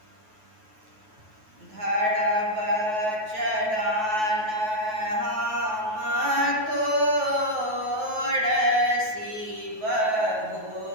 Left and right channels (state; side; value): late; left; 9.3 ms